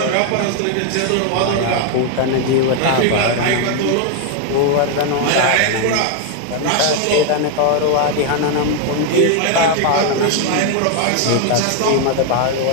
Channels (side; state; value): both; different; correlation 0.01